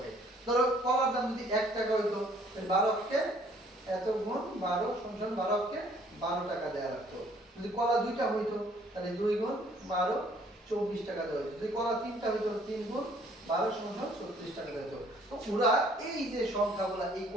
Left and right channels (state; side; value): normal; both; correlation 0.60